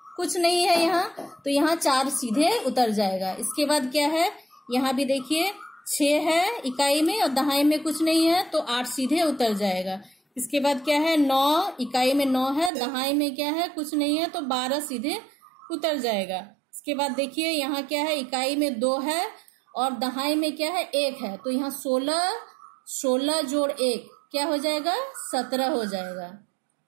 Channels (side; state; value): left; drops out; at 12.7 s